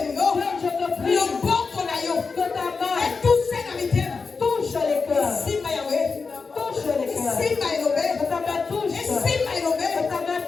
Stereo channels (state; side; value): quieter; right; 4.7 dB